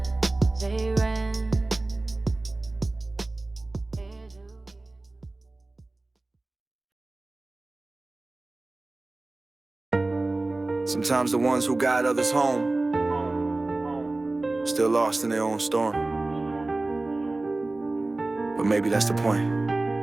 Zay Renz. Sometimes the ones who guide others home still lost in their own storm. But maybe that's the point.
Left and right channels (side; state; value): left; quieter; 3.0 dB